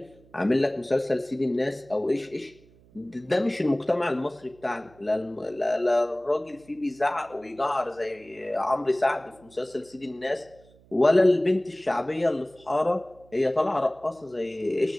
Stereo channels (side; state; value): right; noise; hum, 28 dB below the sound